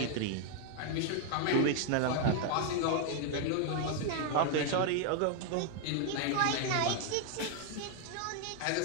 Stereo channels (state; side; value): different; both; correlation 0.00